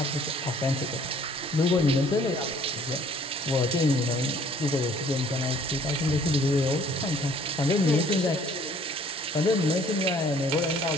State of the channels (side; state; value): both; normal; correlation 0.57